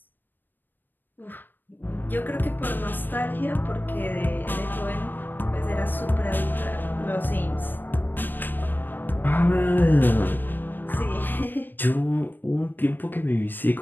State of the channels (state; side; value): late; right; 0.092 ms